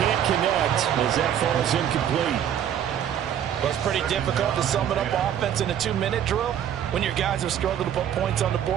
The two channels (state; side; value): quieter; left; 9.8 dB